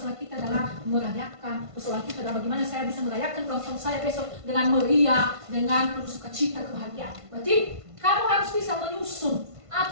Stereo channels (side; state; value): left; late; 1.5 ms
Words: kita adalah merayakan, persoalan kita adalah bagaimana saya bisa merayakan ulang tahun saya besok dengan meriah, dengan penuh sukacita, kebahagiaan. Berarti kamu harus bisa menyusun